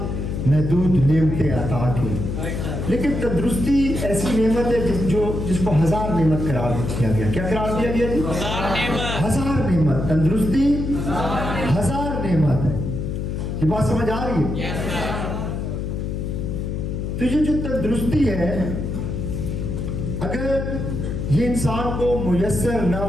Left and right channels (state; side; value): noise; left; hum, 3 dB below the sound